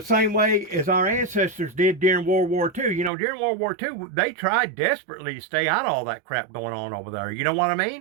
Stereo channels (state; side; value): drops out; left; at 3.1 s